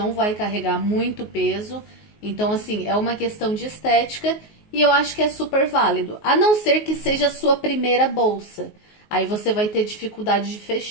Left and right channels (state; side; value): late; right; 19 ms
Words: vai carregar muito peso. Então, assim, é uma questão de estética e eu acho que é super válido. A não ser que seja a sua primeira bolsa. Aí você vai ter dificuldade de